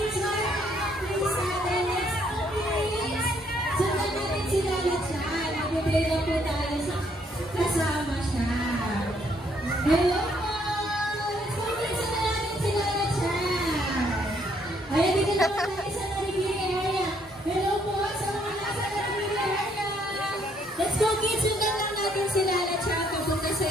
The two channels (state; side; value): normal; both; correlation 0.69